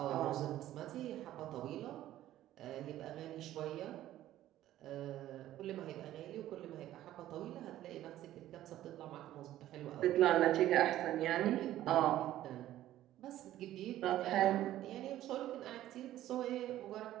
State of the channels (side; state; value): left; quieter; 13.6 dB